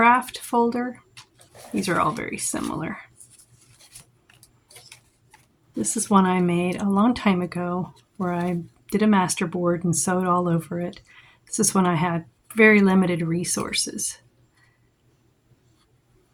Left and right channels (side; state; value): both; identical; correlation 1.00